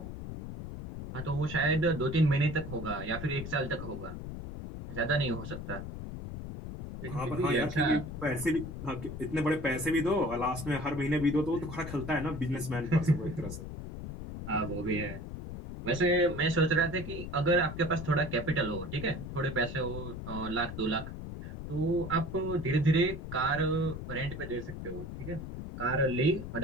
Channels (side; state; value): left; noise; rumble, 8 dB below the sound